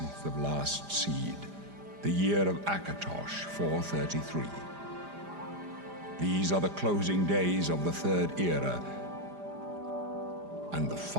of last seed, the year of Akatosh 433. These are the closing days of the Third Era and the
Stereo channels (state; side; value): late; left; 5.0 ms